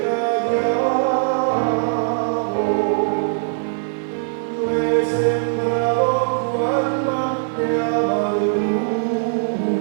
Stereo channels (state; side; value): silent; left; 62 dB below the other